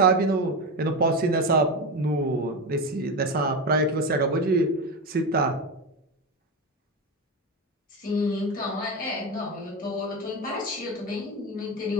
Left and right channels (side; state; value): both; normal; correlation 0.18